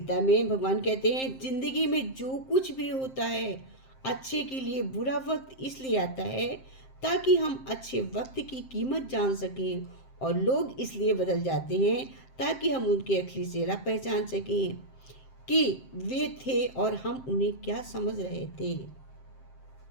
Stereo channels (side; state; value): right; late; 7.6 ms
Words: में भगवान कहते हैं, जिंदगी में जो कुछ भी होता है अच्छे के लिए। बुरा वक्त इसलिए आता है ताकि हम अच्छे वक्त की कीमत जान सकें, और लोग इसलिए बदल जाते हैं ताकि हम उनके असली चेहरा पहचान सकें कि वे थे और हम उन्हें क्या समझ रहे थे।